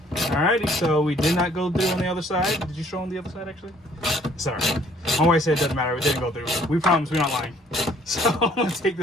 so we did not go through on the other side. Did you show on the other side actually? Sorry. My wife said it doesn't matter. We didn't go through. We promise we're not lying. So I'm gonna take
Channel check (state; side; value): normal; both; correlation 0.60